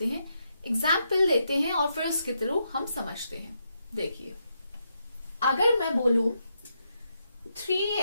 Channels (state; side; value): inverted; both; correlation -0.81